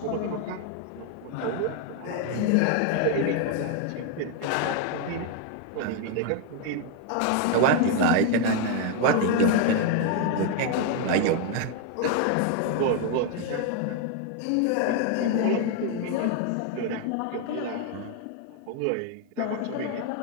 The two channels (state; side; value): different; both; correlation 0.01